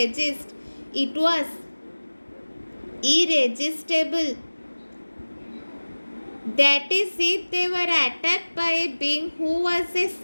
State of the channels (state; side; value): inverted; both; correlation -1.00